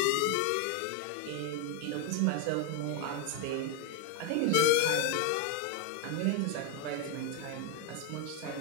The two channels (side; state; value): both; different; correlation 0.01